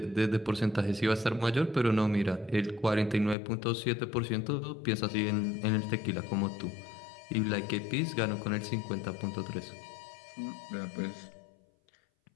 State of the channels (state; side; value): drops out; right; at 3.4 s